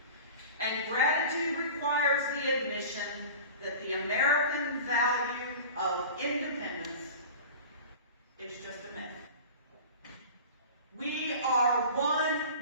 And gratitude requires the admission that the American value of independence is just a myth. We are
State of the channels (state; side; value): inverted; both; correlation -0.37